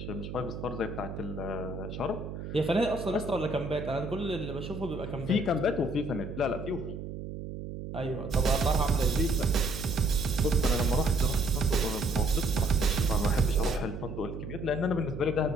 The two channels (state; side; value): noise; right; hum, 8 dB below the sound